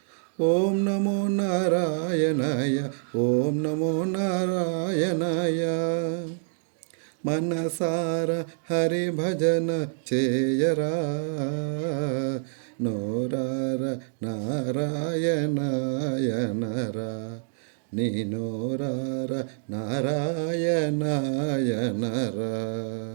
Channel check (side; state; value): left; silent; digital silence